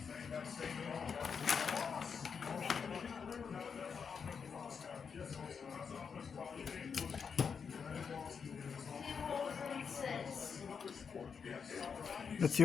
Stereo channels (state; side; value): quieter; right; 6.2 dB